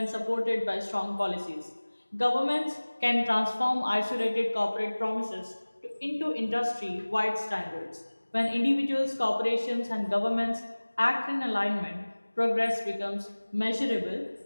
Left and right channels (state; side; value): inverted; both; correlation -1.00